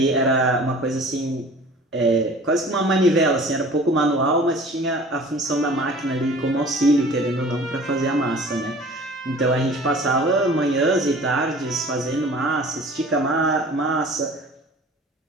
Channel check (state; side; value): normal; both; correlation 0.46